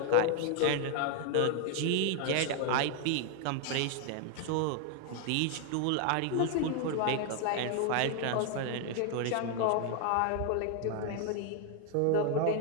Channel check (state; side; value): different; both; correlation 0.00